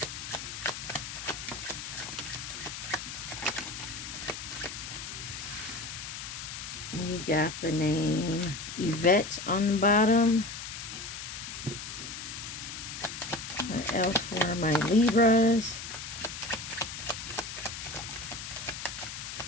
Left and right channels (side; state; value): left; noise; hiss, 8 dB below the sound